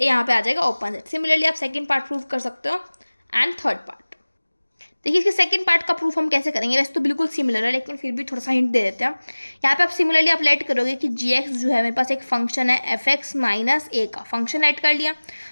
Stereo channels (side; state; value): both; inverted; correlation -1.00